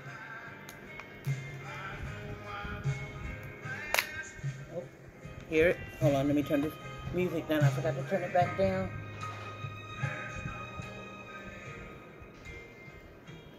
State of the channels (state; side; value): identical; both; correlation 1.00